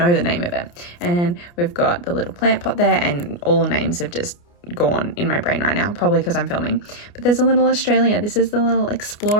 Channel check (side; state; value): right; late; 29 ms